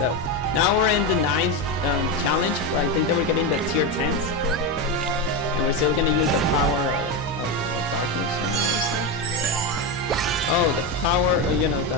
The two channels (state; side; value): normal; both; correlation 0.13